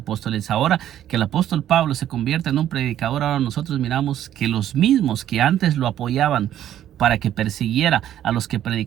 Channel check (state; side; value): quieter; left; 11.5 dB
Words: Ahora que el apóstol Pablo se convierte en un predicador, ahora nosotros miramos que los mismos que antes lo apoyaban para que persiguiera a los que